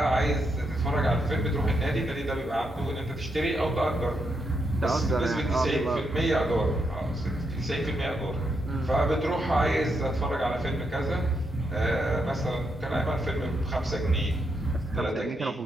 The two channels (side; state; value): both; normal; correlation 0.80